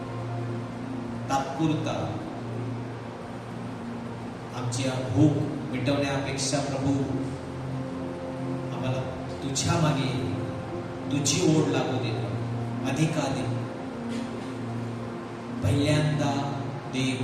तात्पुरता आमची भूक मिटवण्यापेक्षा प्रभू आम्हाला तुझ्या मागे तुझी ओढ लागू दे. अधिकाधिक पहिल्यांदा देव.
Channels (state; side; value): identical; both; correlation 1.00